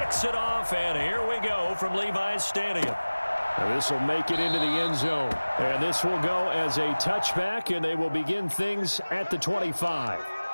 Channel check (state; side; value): inverted; both; correlation -1.00